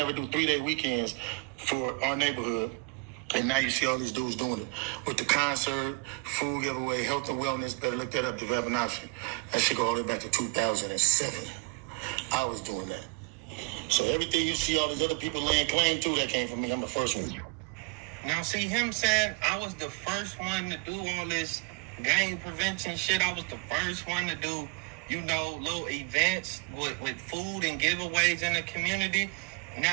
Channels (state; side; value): quieter; left; 29.3 dB